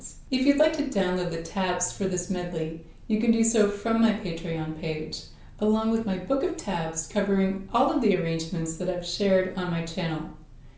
If you'd like to download the tabs for this medley, you can do so from my Patreon page, along with my book of tabs covering all of the arrangements that I've shared on my channel.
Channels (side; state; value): both; identical; correlation 1.00